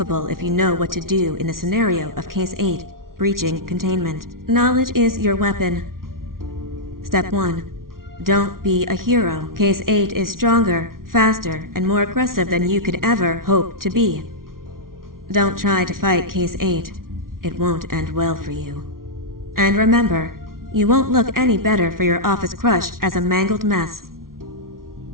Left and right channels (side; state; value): left; late; 0.92 ms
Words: if you know what to do in the scenario of Case 8, breaching containment. Knowledge is your weapon. Step 1. Don't be a hero. Case 8 is stronger, faster, and more aggressive than you could ever hope to be. Don't try to fight Case 8. It won't end well for you. And remember, you won't look any better for your office crush as a mangled mess.